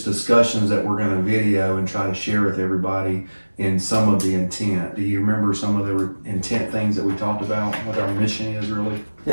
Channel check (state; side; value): inverted; both; correlation -1.00